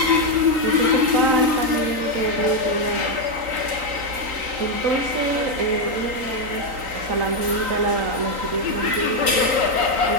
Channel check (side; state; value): left; late; 3.9 ms